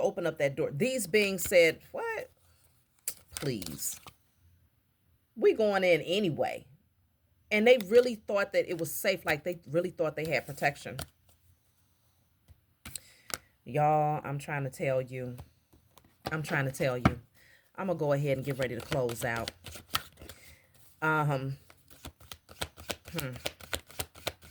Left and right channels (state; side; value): identical; both; correlation 1.00